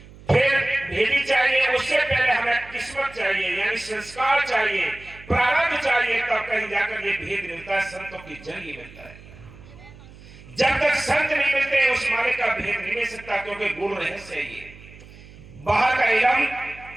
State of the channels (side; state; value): right; noise; hum, 20 dB below the sound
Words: फिर भेदी चाहिए, उससे पहले हमें किस्मत चाहिए, यानी संस्कार चाहिए, प्रारब्ध चाहिए, तब कहीं जाकर ये भेद मिलता है। संतों की जरिए मिलता है। जब तक संत नहीं मिलते, उस मालिक का भेद नहीं मिल सकता, क्योंकि गुरु रहस्य है ये। बाहर का इलम